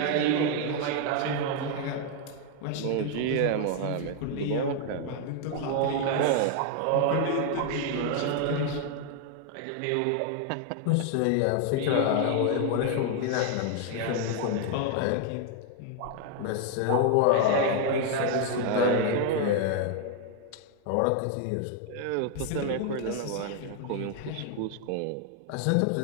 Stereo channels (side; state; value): both; different; correlation 0.00